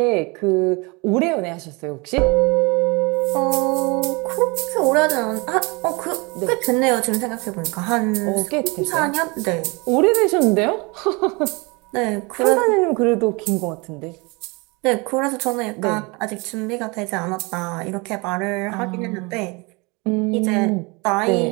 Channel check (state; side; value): quieter; left; 27.8 dB